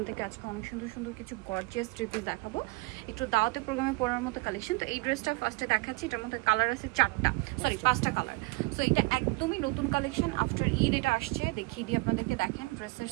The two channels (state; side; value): quieter; left; 25.3 dB